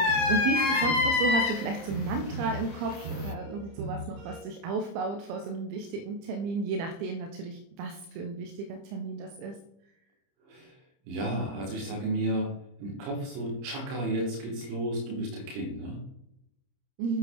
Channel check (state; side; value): late; left; 30 ms